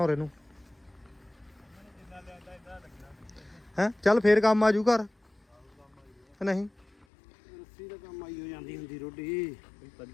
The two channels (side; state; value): right; drops out; at 7.1 s